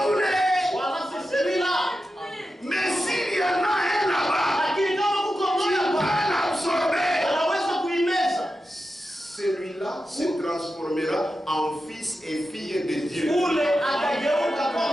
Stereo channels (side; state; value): both; normal; correlation 0.91